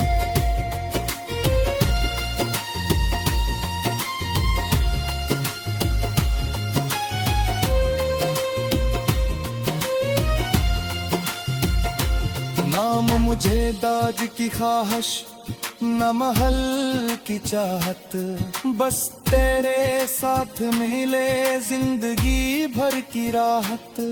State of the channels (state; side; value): identical; both; correlation 1.00